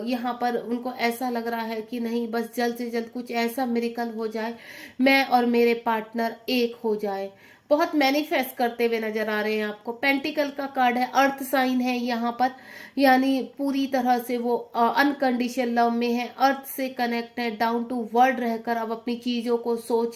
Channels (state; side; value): identical; both; correlation 1.00